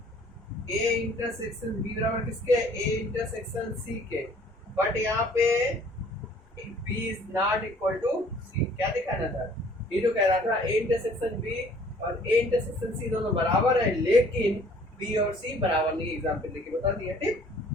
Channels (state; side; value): normal; both; correlation 0.56